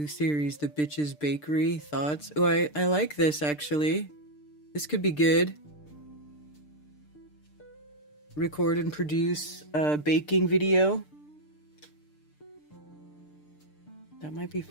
series, The Bitches Bakery. Thoughts? Oh, I like this actually. This could be good. Record and produce a baking video. That might be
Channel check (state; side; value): late; right; 6.7 ms